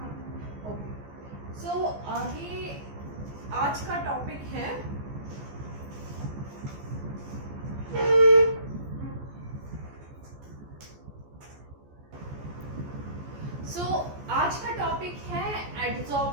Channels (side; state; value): left; late; 14 ms